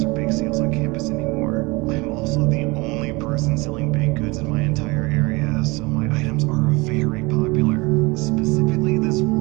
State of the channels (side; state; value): left; quieter; 24.9 dB